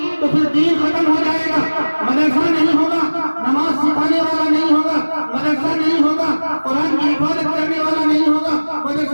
तो फिर दीन खत्म हो जाएगा। मदरसा नहीं होगा, नमाज सिखाने वाला नहीं होगा, मदरसा नहीं होगा, कुरान की हिफाजत करने वाला नहीं होगा,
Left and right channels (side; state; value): both; inverted; correlation -1.00